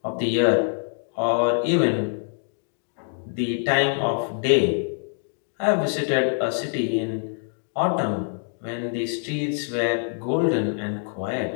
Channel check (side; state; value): right; silent; 62 dB below the other